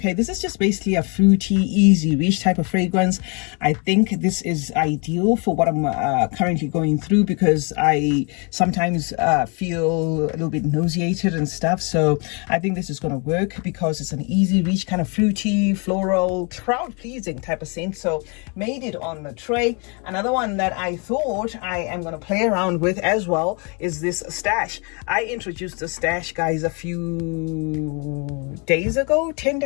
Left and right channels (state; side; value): quieter; right; 33.7 dB